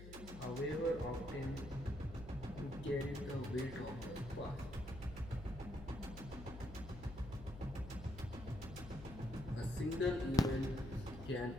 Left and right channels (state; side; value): noise; left; hum, 12 dB below the sound